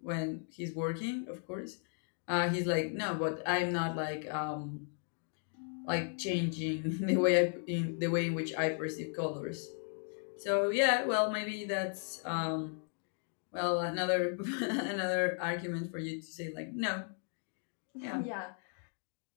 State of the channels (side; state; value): right; silent; 54 dB below the other